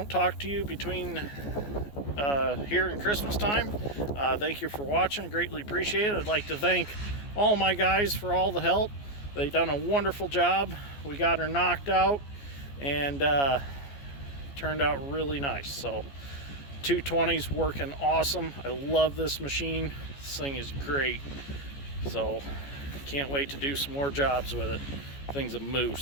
talk to you between here and Christmas time, thank you for watching. Greatly appreciate it. I'd like to thank all my guys for all the help. They've done a wonderful job. We got her knocked out, and turned out really nice. So 220's working awesome. I love this machine. This thing is great. So can't wait to do some more jobs with it. Thing's a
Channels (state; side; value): late; right; 14 ms